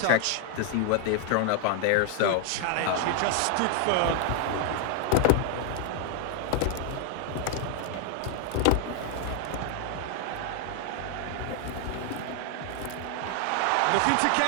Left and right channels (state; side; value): different; both; correlation 0.00